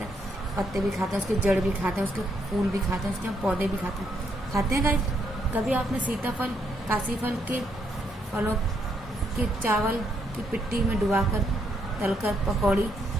हैं पत्ते भी खाते हैं, उसके जड़ भी खाते हैं, उसके फूल भी खाते हैं, उसके हम पौधे भी खाते हैं गाइस। कभी आपने सीताफल, काशी फल के फलों के चावल की पिट्टी में डुबाकर तलकर पकौड़ी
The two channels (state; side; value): normal; both; correlation 0.75